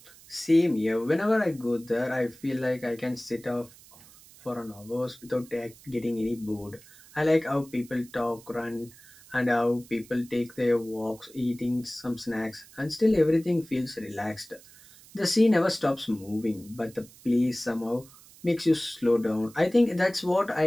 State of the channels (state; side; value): noise; right; hiss, 23 dB below the sound